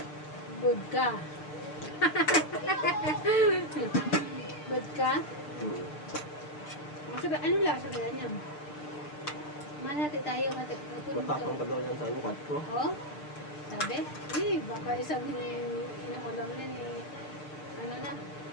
Bodka. Bodka? Masaka, ano lasa kaya niya? Malati tayo. Matapang pa daw yan sa ano, 4. Oh? Sabi? Baka isang inakulang na ni... Ano na?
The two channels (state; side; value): late; right; 6.7 ms